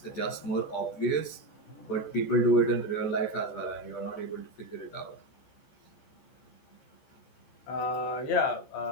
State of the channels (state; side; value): late; right; 14 ms